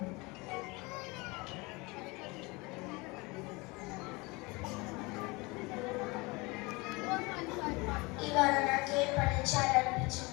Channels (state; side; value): quieter; right; 25.2 dB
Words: ఇవాళ నాకేం పని